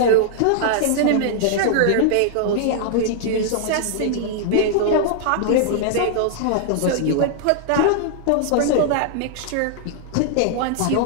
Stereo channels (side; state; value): both; different; correlation -0.01